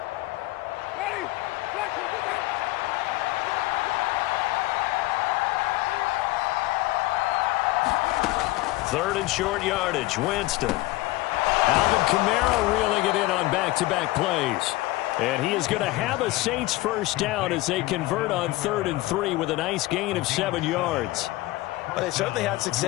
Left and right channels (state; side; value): quieter; right; 19.2 dB